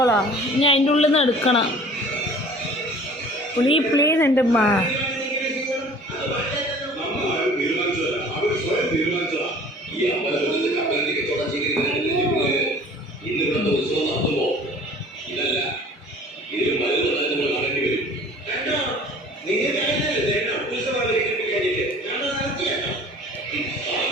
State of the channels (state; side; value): normal; both; correlation 0.48